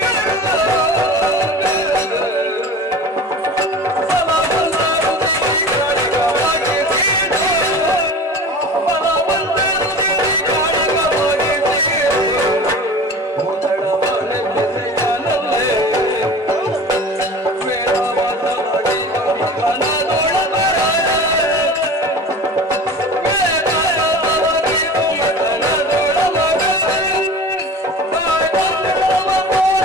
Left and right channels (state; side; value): normal; both; correlation 0.37